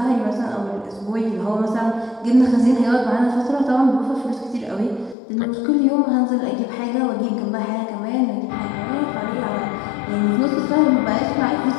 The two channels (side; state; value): right; drops out; at 5.2 s